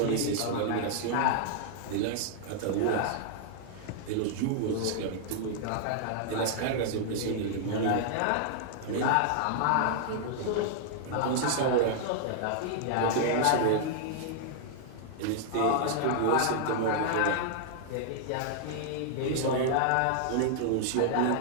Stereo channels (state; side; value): different; both; correlation -0.01